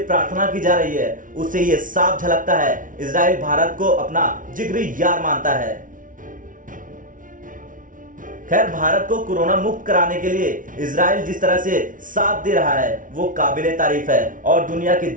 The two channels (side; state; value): left; late; 0.38 ms